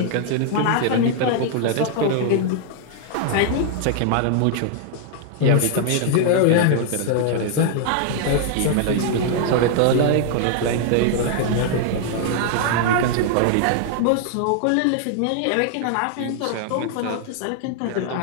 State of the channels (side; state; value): both; different; correlation 0.00